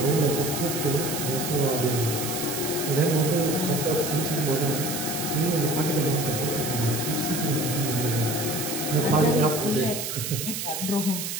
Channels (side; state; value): right; noise; hiss, 4 dB below the sound